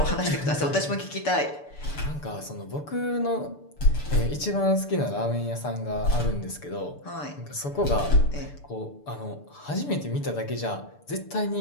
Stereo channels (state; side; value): late; right; 6.9 ms